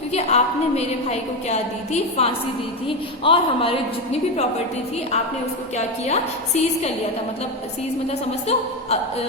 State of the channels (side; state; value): both; normal; correlation 0.13